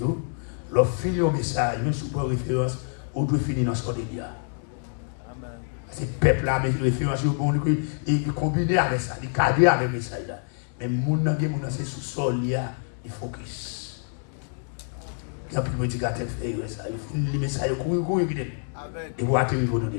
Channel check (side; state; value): right; silent; 61 dB below the other